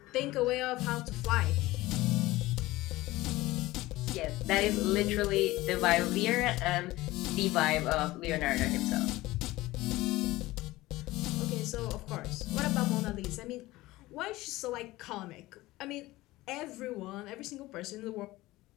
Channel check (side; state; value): right; quieter; 18.5 dB